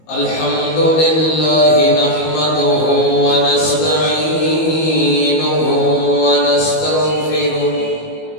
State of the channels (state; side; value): late; right; 19 ms